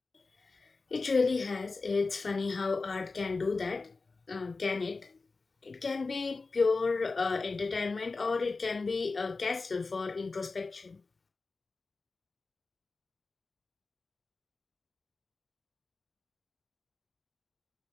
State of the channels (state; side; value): quieter; right; 3.9 dB